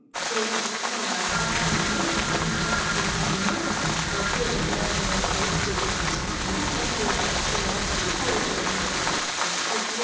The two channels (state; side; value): identical; both; correlation 1.00